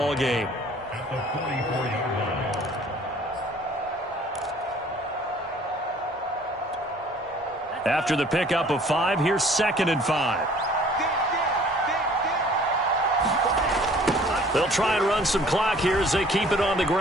game. After the pickup of 5, here's 2nd and 5. They'll try and run some clock here as they keep it on the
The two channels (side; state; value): both; normal; correlation 0.53